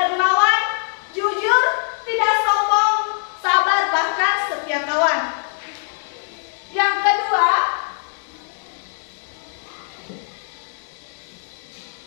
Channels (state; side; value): silent; right; 64 dB below the other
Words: dermawan, jujur, tidak sombong, sabar, bahkan setia kawan. Yang kedua,